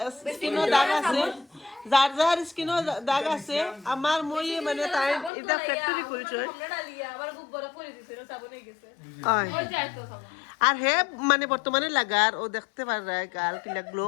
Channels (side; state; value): right; drops out; at 5.3 s